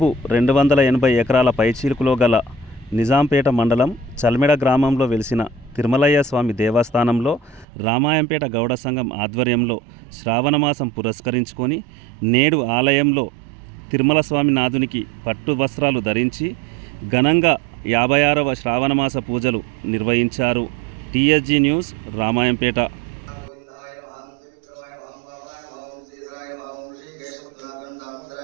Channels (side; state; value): left; drops out; at 7.7 s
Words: 280 ఎకరాల పైచీలుకులో గల నిజాంపేట మండలం చల్మెడ గ్రామంలో వెలిసిన తిరుమలయ్య స్వామి దేవస్థానంలో రామాయంపేట గౌడ సంఘం ఆధ్వర్యంలో శ్రావణమాసం పురస్కరించుకొని నేడు ఆలయంలో తిరుమల స్వామి నాథునికి పట్టు వస్త్రాలు ధరించి ఘనంగా 56వ శ్రావణమాస పూజలు నిర్వహించారు. TSG news, Ramayampet.